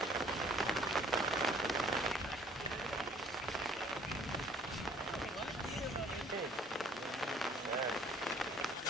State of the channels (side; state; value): both; normal; correlation 0.56